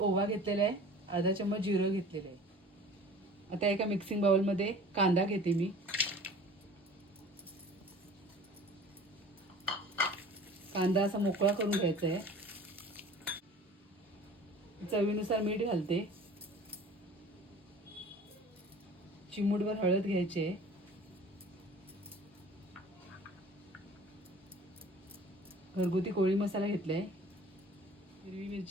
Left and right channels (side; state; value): both; normal; correlation 0.44